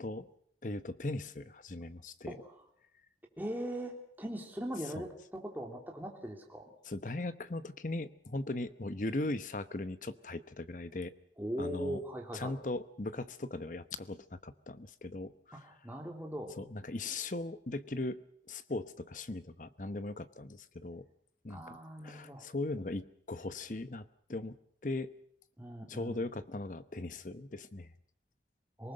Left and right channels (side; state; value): both; normal; correlation 0.63